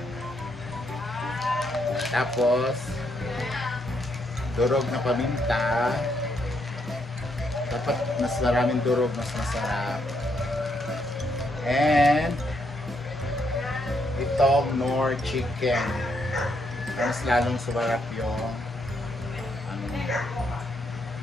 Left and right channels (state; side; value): normal; both; correlation 0.76